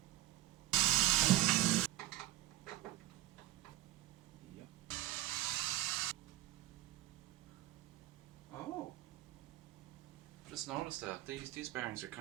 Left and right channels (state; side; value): quieter; left; 15.6 dB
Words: Yep. Oh, just noticed that these bearings are